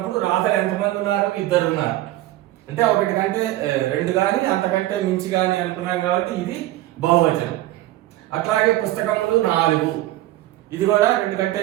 రాధలు ఎంతమంది ఉన్నారు? 2 ఉన్నారు. అంటే ఒకటి కంటే 2 కానీ అంతకంటే మించి కానీ అనుకున్నాం కాబట్టి ఇది బహువచనం. అట్లాగే పుస్తకములు 4, ఇది కూడా 2 కంటే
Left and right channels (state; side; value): quieter; left; 15.8 dB